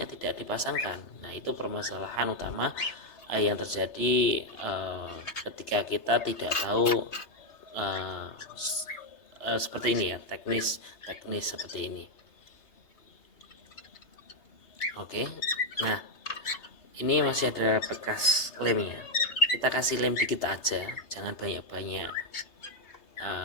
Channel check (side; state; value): right; late; 3.3 ms